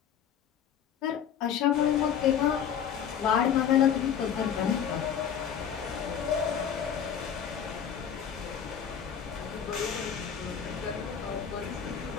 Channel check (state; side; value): quieter; right; 8.4 dB